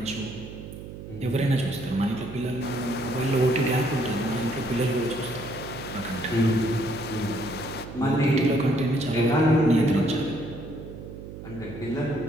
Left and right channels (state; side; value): noise; right; hum, 12 dB below the sound